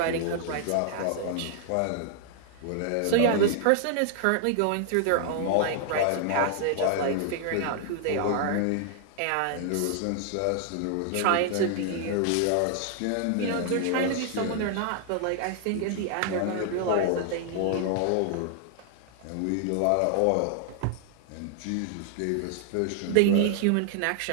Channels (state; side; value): different; both; correlation 0.00